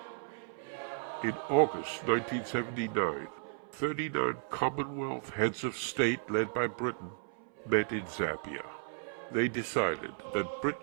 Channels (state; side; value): silent; left; 55 dB below the other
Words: In August 1979, 39 Commonwealth heads of state led by Britain met in Zambia. They decided that